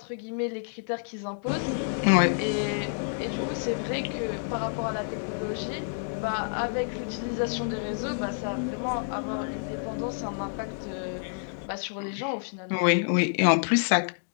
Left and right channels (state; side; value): silent; right; digital silence